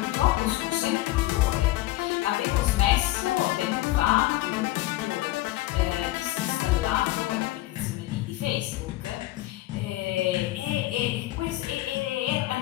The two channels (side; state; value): right; quieter; 16.8 dB